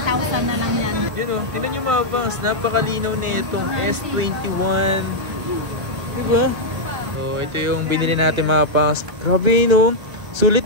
na lang yan. Yun o, tinan nyo mga pangs, napakalinaw na itong S21. Diba? So, ito yung binili natin mga pangs. Grabe no,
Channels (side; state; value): left; late; 1.9 ms